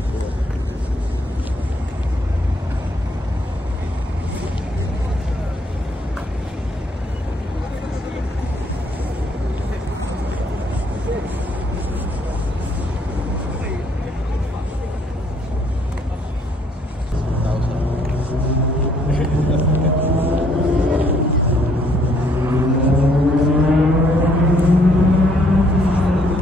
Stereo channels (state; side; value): normal; both; correlation 0.66